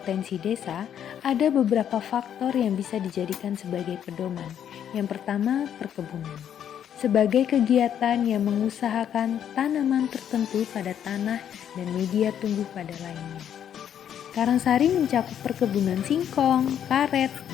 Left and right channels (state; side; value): quieter; right; 9.5 dB